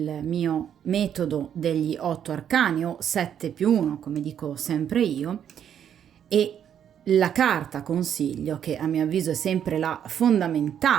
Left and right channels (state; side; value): quieter; left; 9.2 dB